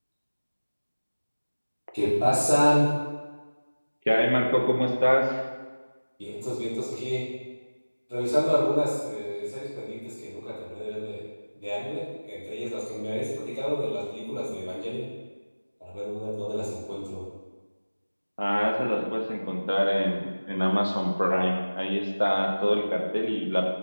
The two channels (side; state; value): both; inverted; correlation -1.00